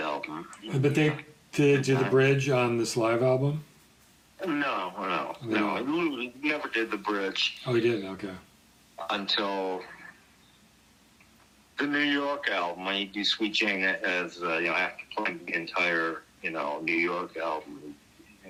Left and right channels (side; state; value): both; identical; correlation 1.00